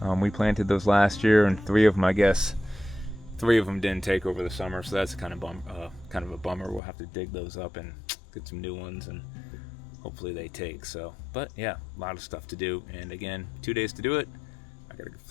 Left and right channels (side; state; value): right; drops out; at 6.8 s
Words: we planted those last year, and 3 of them, I guess, 3 of them didn't take over the summer. So that's kind of a bummer. We'll have to dig those up and get some new ones, and hopefully they take. So, but yeah, a lot of stuff to do. And again, 2 days to do it. I gotta